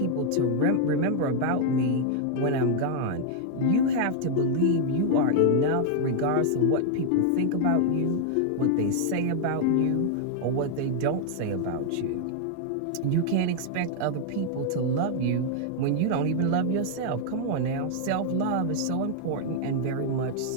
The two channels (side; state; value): both; different; correlation 0.00